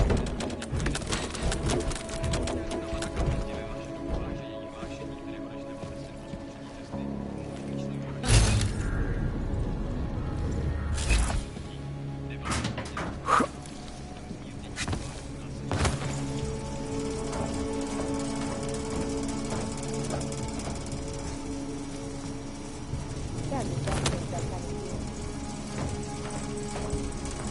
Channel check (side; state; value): both; identical; correlation 1.00